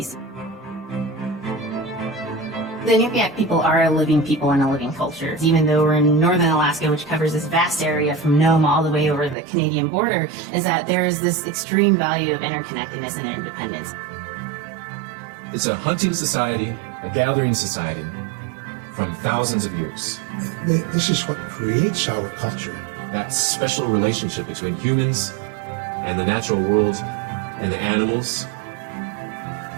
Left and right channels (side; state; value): left; drops out; at 9.3 s